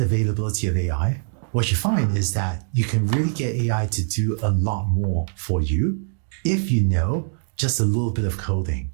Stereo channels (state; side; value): silent; left; digital silence